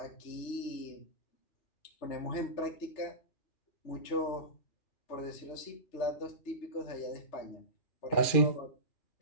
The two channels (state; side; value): late; right; 2.4 ms